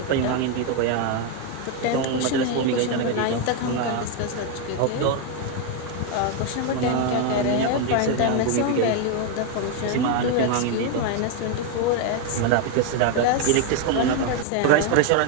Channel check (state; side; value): different; both; correlation 0.01